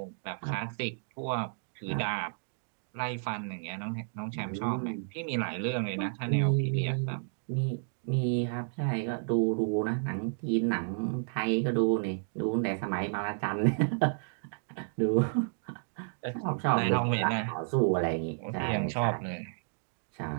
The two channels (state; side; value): silent; left; digital silence